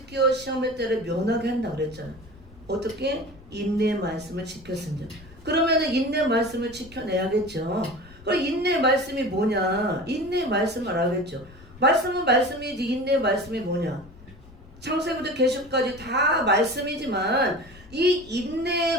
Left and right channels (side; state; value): left; noise; rumble, 21 dB below the sound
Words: 시험의 때를 면하게 한다 그랬잖아요. 어떻게? 인내의 말씀을 지켰습니다. 그러면은 인내의 말씀을 지켜내야겠죠. 그럼 인내의 말씀이 뭐냐? 인내의 말씀을 알아야겠죠. 말씀은 말씀이지 인내의 말씀이 뭐냐? 창세부터 계시록까지 다 말씀이지만 이